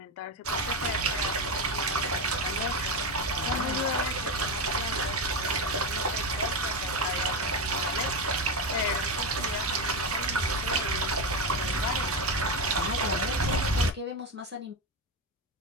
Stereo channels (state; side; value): normal; both; correlation 0.13